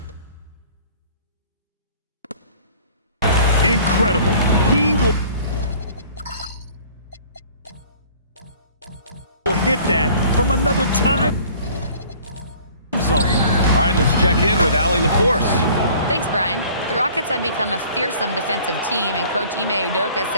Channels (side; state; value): both; inverted; correlation -0.50